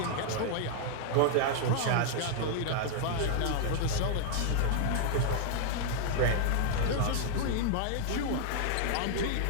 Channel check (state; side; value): different; both; correlation -0.01